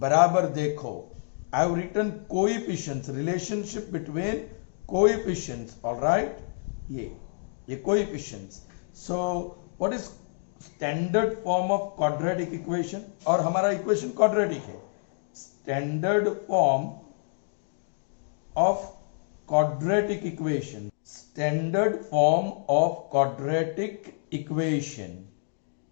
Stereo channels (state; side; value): silent; right; digital silence